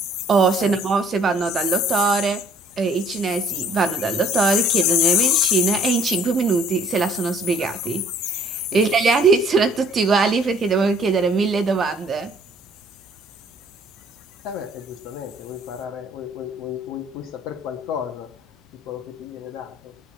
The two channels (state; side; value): normal; both; correlation 0.57